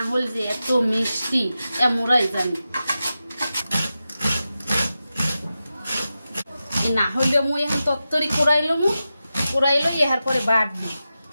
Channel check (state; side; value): inverted; both; correlation -0.92